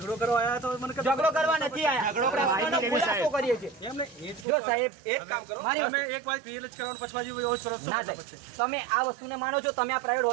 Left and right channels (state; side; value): drops out; left; at 4.5 s